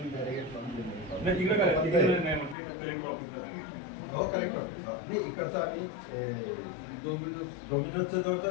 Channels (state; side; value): drops out; right; at 2.6 s